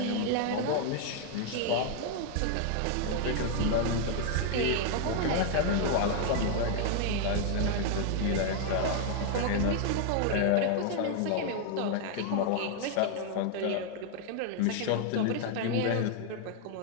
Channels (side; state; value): both; different; correlation 0.00